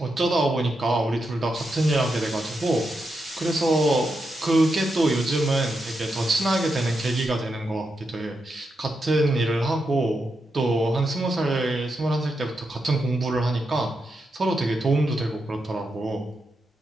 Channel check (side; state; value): both; normal; correlation 0.85